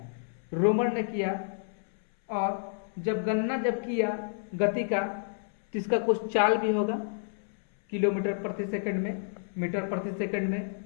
रोमर ने किया, और जब गणना जब किया गति का, तो इसका कुछ चाल भी होगा, किलोमीटर प्रति सेकंड में, मीटर प्रति सेकंड में,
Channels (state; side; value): silent; right; 58 dB below the other